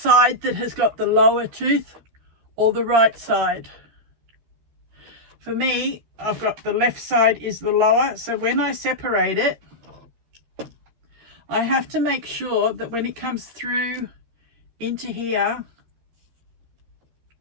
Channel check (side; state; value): left; late; 13 ms